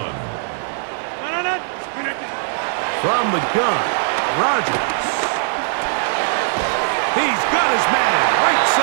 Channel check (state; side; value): silent; left; 56 dB below the other